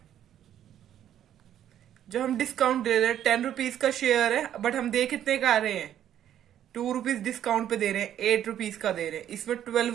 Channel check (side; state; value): left; quieter; 10.7 dB